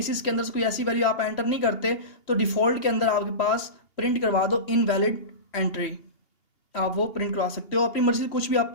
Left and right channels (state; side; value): late; right; 2.8 ms